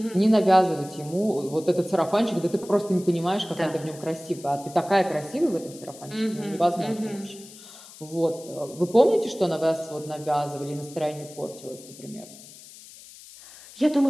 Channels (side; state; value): left; noise; hiss, 19 dB below the sound